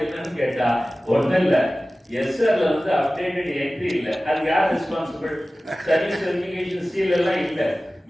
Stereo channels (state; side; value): normal; both; correlation 0.96